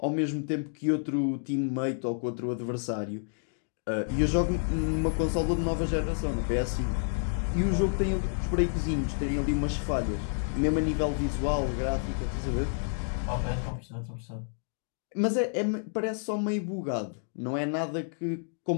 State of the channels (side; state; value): right; silent; digital silence